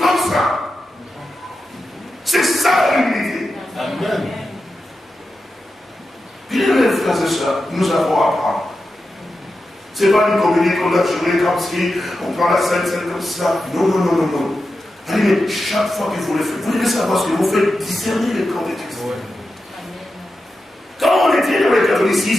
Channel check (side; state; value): both; normal; correlation 0.91